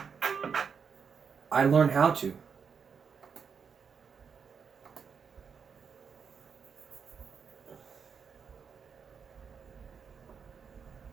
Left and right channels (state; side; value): quieter; left; 6.3 dB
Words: I learned how to.